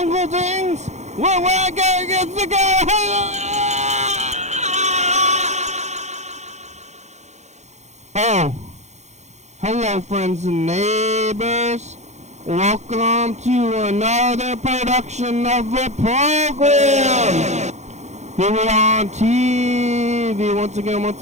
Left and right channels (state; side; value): late; left; 0.33 ms